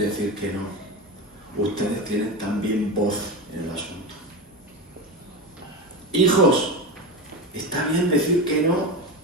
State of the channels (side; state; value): both; normal; correlation 0.20